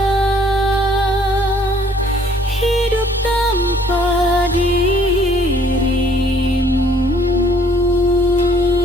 hidup tanpa dirimu.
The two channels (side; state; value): both; normal; correlation 0.60